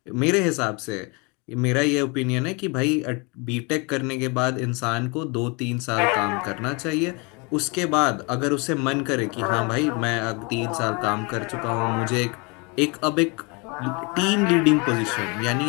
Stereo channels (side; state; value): right; quieter; 30.3 dB